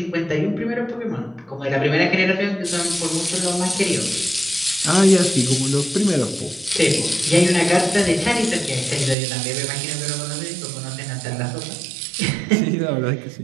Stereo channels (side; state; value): left; drops out; at 9.2 s